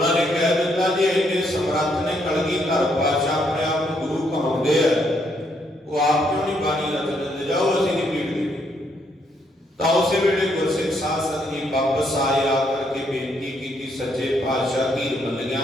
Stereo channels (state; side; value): normal; both; correlation 0.73